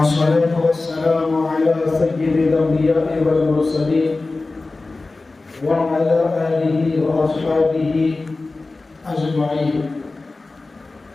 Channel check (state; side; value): quieter; right; 3.4 dB